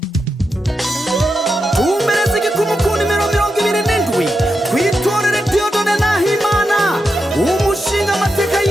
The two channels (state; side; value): normal; both; correlation 0.87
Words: Umereze gikumukuni mirongo ibiri n'indwi kwitorere Dieudonné Nahimana umushinga amateka